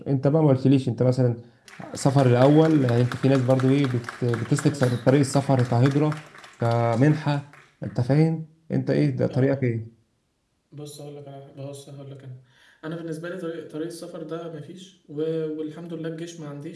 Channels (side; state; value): both; identical; correlation 1.00